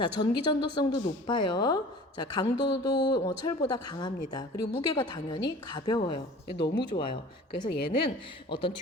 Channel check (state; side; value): normal; both; correlation 0.44